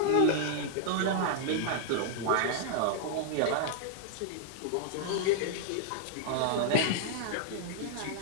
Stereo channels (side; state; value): both; different; correlation -0.01